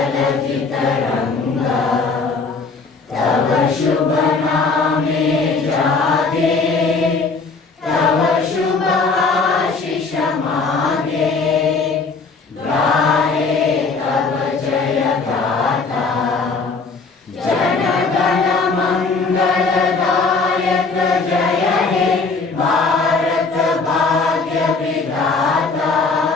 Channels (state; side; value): quieter; right; 4.3 dB